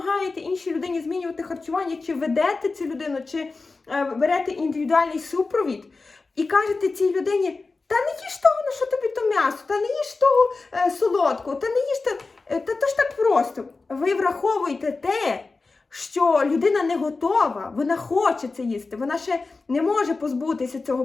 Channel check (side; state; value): right; quieter; 3.9 dB